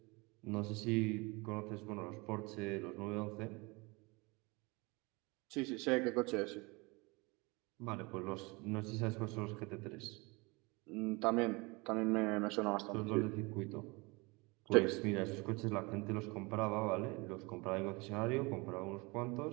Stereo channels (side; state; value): left; quieter; 26.4 dB